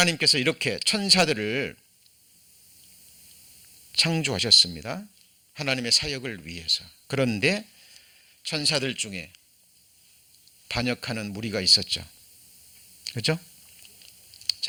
이렇게 천사들을 창조하셨습니다. 하나님의 사역을 위해서. 그런데 천사들 중에 반역하는 무리가 있었죠. 그렇죠?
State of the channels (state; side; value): identical; both; correlation 1.00